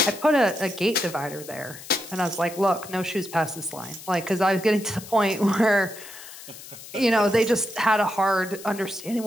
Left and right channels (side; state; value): left; noise; hiss, 15 dB below the sound